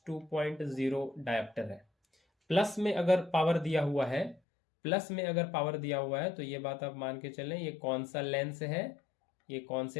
डायप्टर है। प्लस में अगर पावर दिया हुआ है, प्लस में अगर पावर दिया हुआ है तो ये बात आप मान के चलें, ये कौन सा लेंस है? ये कौन से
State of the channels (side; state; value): right; drops out; at 4.4 s